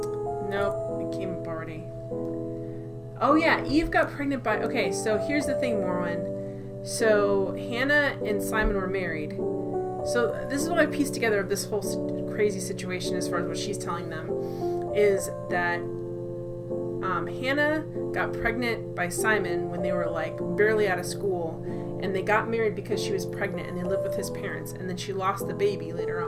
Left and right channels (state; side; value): identical; both; correlation 1.00